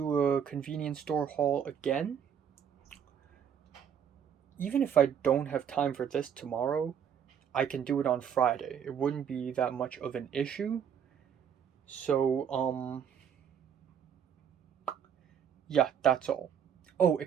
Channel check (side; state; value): left; quieter; 8.2 dB